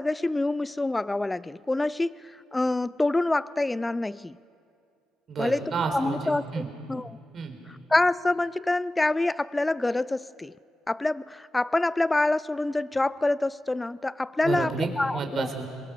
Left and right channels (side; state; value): both; normal; correlation 0.96